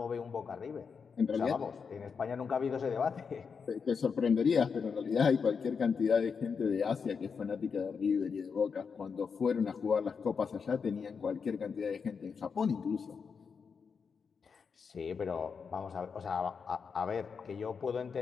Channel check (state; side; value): quieter; right; 5.8 dB